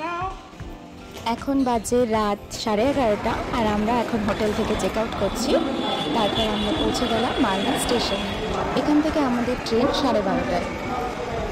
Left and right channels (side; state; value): both; identical; correlation 1.00